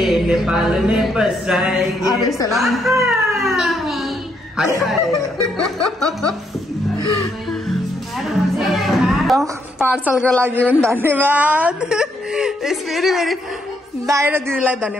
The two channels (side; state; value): both; normal; correlation 0.75